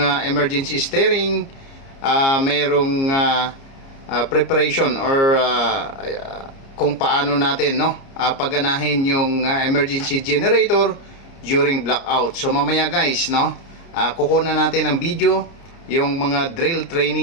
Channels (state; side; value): late; right; 29 ms